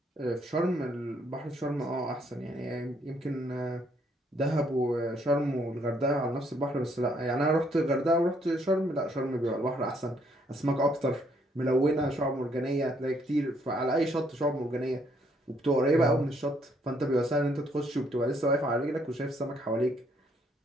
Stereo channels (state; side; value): normal; both; correlation 0.69